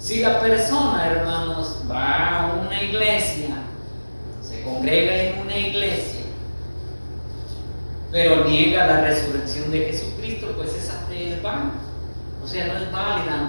la persona, hermanos, va a una iglesia, se congrega en una iglesia, pero niega la resurrección de Jesucristo, pues esa fe es vana. O sea, no es válida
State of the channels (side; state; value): both; inverted; correlation -1.00